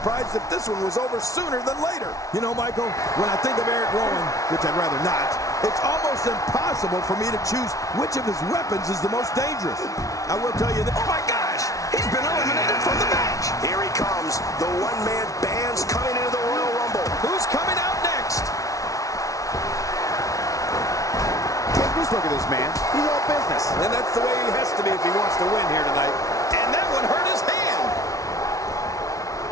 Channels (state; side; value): late; right; 0.17 ms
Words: if this one was over sooner than later. You know, Michael, when I think of Eric Rowan, which I'd rather not, it's almost impossible for me to choose which of his weapons is the most dangerous. I will tell you that, oh my gosh, he's been eliminated from the match. Here he comes, the one-man band's coming into the Royal Rumble. Who's coming out next? Take this look at this man. He's all business. And that's the way he has to be if he wants to win here tonight. And that one hurt his hand.